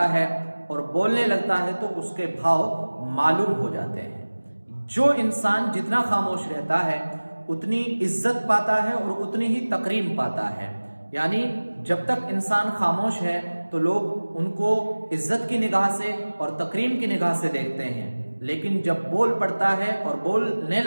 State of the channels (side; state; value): both; inverted; correlation -1.00